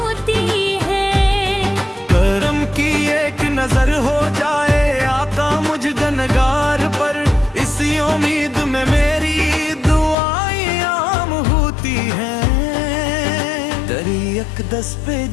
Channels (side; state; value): right; drops out; at 10.2 s